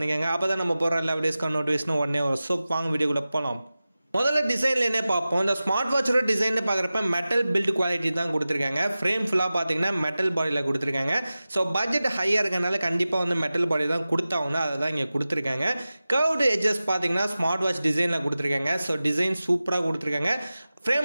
அப்போ தான் நம்ம போகிற எல்லா வீடியோஸ்க்கான நோட்டிஃபிகேஷன் உடனே வரும். ஸோ வாங்க வீடியோக்குள்ள போகலாம். முதல்ல டிசைன்ல என்ன பார்ப்போம். இந்த ஸ்மார்ட் வாட்சோட டிசைன் பார்க்குறப்ப மெட்டல் பில்ட் குவாலிட்டி தான் கொடுத்துருக்காங்க. ஃப்ரேம் ஃபுல்லாக பார்த்தீங்கன்னா மெட்டல் பாடியில் கொடுத்துருக்காங்க. ஸோ பட்ஜெட் ஹையாக இருக்கனால கண்டிப்பாக வந்து மெட்டல் பாடி தான் கொடுத்தாங்கன்னா அதை தான் இங்கே கொடுத்துருக்காங்க. கர்வ்டு எட்ஜஸ் பார்த்தீங்கன்னா ஸ்மார்ட் வாட்ச் டிசைனில் கொடுத்துருக்காங்க. ஸோ டிசைன் சூப்பராக கொடுத்துருக்காங்க.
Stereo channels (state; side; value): inverted; both; correlation -0.96